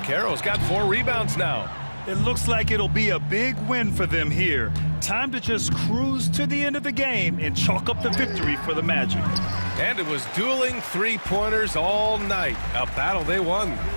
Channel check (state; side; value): inverted; both; correlation -1.00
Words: got 4 rebounds now. It looks like it'll be a big win for them here. Time to just cruise to the end of the game and chalk up the victory for the Magic. And it was dueling 3-pointers all night. A battle they won.